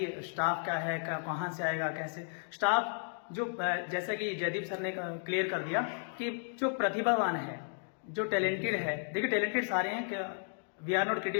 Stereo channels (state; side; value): silent; right; 55 dB below the other